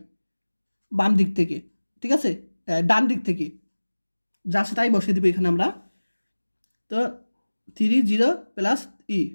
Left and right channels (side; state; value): both; inverted; correlation -1.00